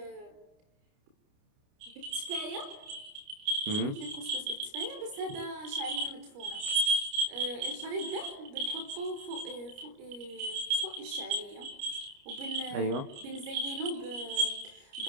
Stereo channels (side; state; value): left; late; 29 ms